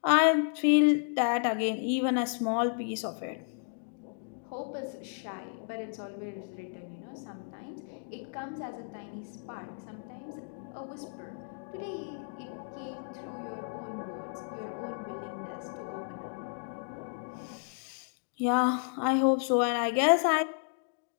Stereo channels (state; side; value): silent; right; digital silence